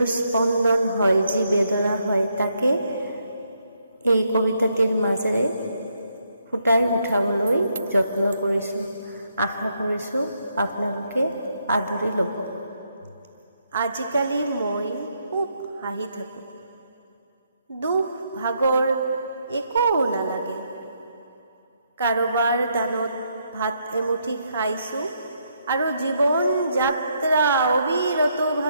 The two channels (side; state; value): both; inverted; correlation -0.76